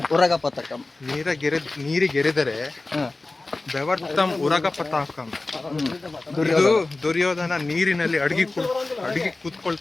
ಉರಗ ಪತಾಕಂ. ನೀರಿಗೆರೆದರೆ ಬೆವರ್ತಂ ಉರಗ ಪತಾಕಂ. ಇದು ದುರ್ಯೋಧನ ನೀರಿನಲ್ಲಿ ಅಡಗಿ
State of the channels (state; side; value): quieter; right; 3.2 dB